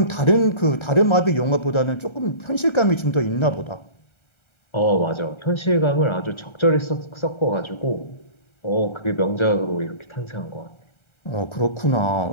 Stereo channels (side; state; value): right; late; 1.3 ms